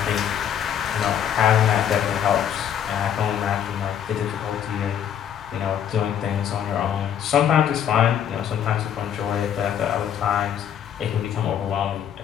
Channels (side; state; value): right; quieter; 9.3 dB